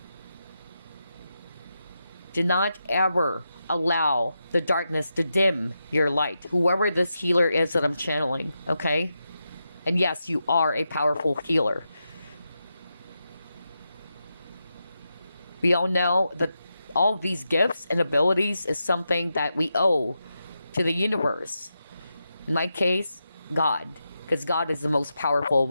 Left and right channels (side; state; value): both; inverted; correlation -0.87